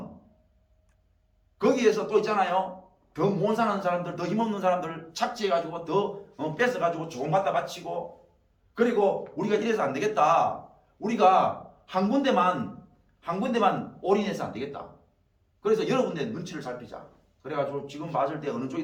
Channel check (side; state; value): both; identical; correlation 1.00